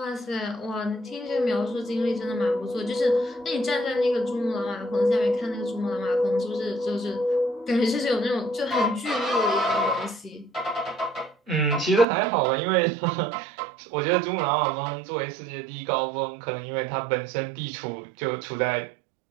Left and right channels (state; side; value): drops out; left; at 12.1 s